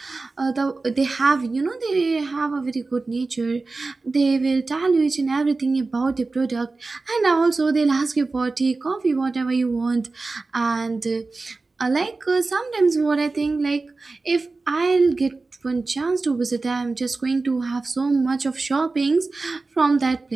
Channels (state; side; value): quieter; left; 3.7 dB